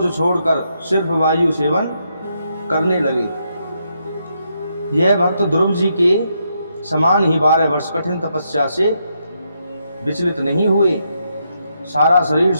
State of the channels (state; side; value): inverted; both; correlation -0.79